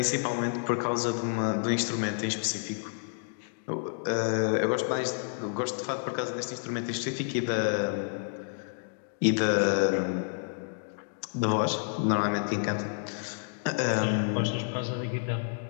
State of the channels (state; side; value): silent; right; digital silence